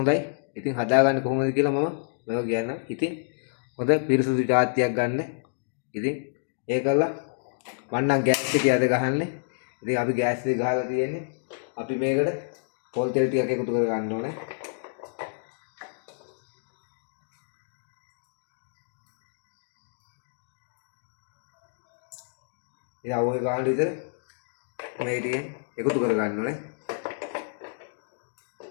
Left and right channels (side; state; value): right; silent; digital silence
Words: ඉතින් හදාගන්නේ කොහොමද කියලා මම මේක කියන්නම් ඉතින් හොඳ පිරිසුදු ජාතියක් ගන්න ඉතින් ඒකලා මම නම් ගෑස් එකේ අද ගහන්නේ ඉතින් අපි ගෑස් එක ගහලා තියෙන්නේ අපි මේකට පොල් තෙල් ටිකක් එකතු කර ගන්න ඕනේ ඉතින් අවුල් ගන්න විතර මේ ටිකෙන් එකතු කර ගන්න ඕනේ